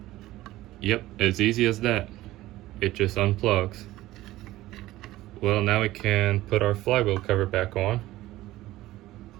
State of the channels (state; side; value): quieter; left; 16.4 dB